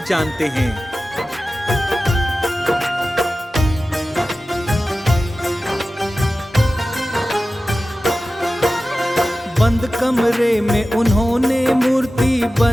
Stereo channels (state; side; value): normal; both; correlation 0.95